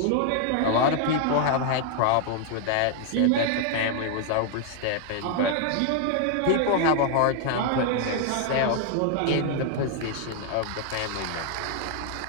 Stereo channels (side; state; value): both; different; correlation 0.00